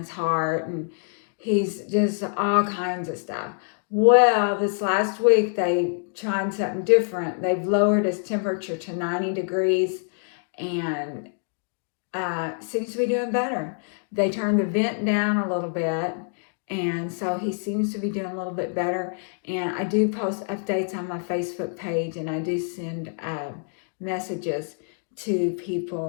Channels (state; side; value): silent; right; 61 dB below the other